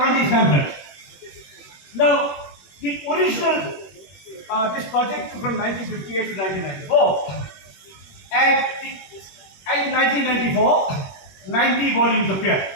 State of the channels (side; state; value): right; late; 21 ms